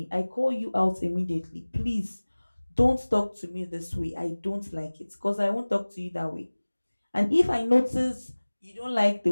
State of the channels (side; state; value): both; inverted; correlation -1.00